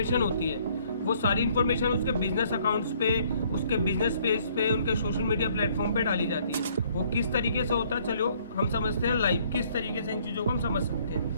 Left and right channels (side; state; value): both; inverted; correlation -0.63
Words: होती है वो सारी इन्फॉर्मेशन उसके बिजनेस अकाउंट्स पे, उसके बिजनेस पेज पे, उनके सोशल मीडिया प्लेटफॉर्म पे डाली जाती है। वो किस तरीके से होता है, चलो हम समझते हैं लाइव किस तरीके से इन चीज़ों को हम समझ सकते